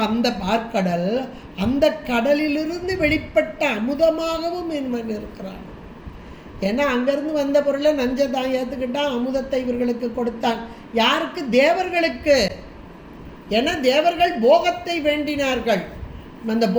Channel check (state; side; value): identical; both; correlation 1.00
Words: அந்த பார்க்கடல் அந்த கடலிலிருந்து வெளிப்பட்ட அமுதமாகவும் இவன் இருக்கிறான். ஏன்னா அங்கேருந்து வந்த பொருளை நஞ்சை தான் ஏற்றுக்கிட்டான், அமுதத்தை இவர்களுக்கு கொடுத்தான். யாருக்கு? தேவர்களுக்கு. ஏன்னா தேவர்கள் போகத்தை வேண்டினார்கள், அந்த